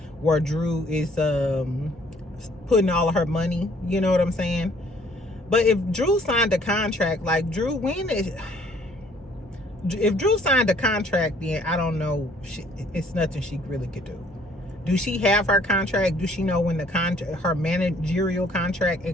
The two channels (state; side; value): normal; both; correlation 0.60